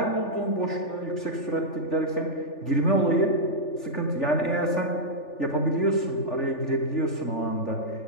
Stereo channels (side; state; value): right; late; 3.4 ms